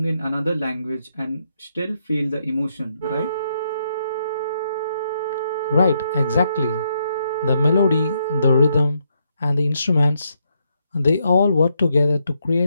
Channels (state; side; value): inverted; both; correlation -0.77